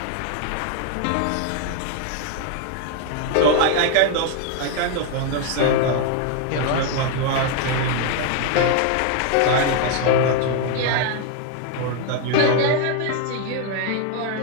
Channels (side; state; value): both; different; correlation 0.01